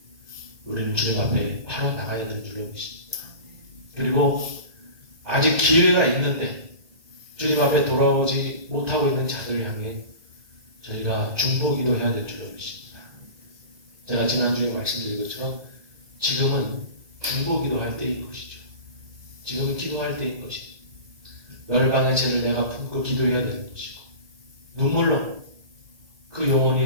우리는 주님 앞에 바로 나가야 될 줄로 믿습니다. 그리고 아직 기회가 있는데 주님 앞에 돌아오지 못하고 있는 자들을 향해 저희가 중보기도 해야 될 줄로 믿습니다. 제가 지난주에 말씀드린 것처럼 지금은 중보기도 할 때인 것이죠. 지금은 기도할 때인 것이죠. 열방의 죄를 내가 품고 기도해야 되는 것이고 눈물로 그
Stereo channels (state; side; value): late; left; 1.6 ms